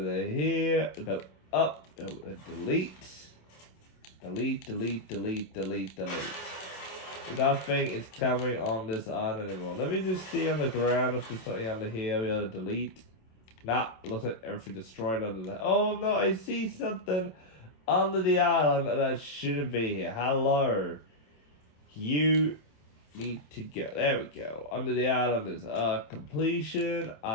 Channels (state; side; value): late; right; 27 ms